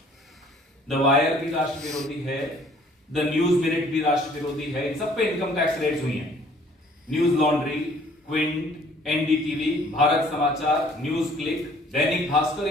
द वायर भी राष्ट्र विरोधी है, द न्यूज मिनट भी राष्ट्र विरोधी है। इन सब पे इनकम टैक्स रेट्स हुई हैं। News laundry, Quint, NDTV, Bharat समाचार, न्यूज क्लिक, दैनिक भास्कर,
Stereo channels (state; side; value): normal; both; correlation 0.57